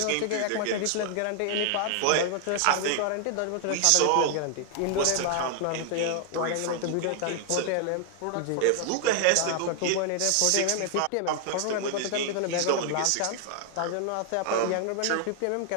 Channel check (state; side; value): different; both; correlation 0.00